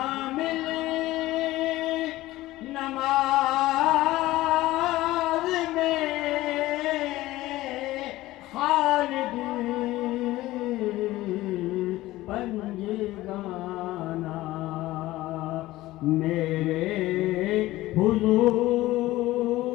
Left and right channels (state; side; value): quieter; right; 17.1 dB